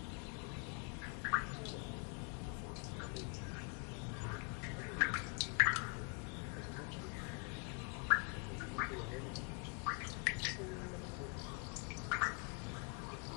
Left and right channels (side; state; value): right; quieter; 39.2 dB